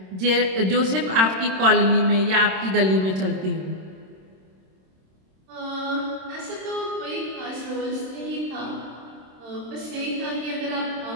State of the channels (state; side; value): late; left; 26 ms